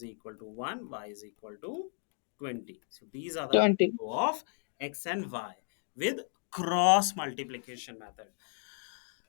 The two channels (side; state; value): right; silent; 55 dB below the other